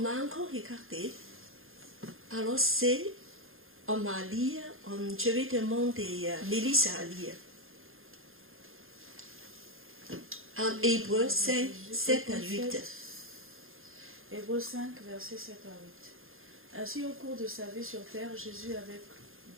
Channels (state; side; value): late; left; 0.60 ms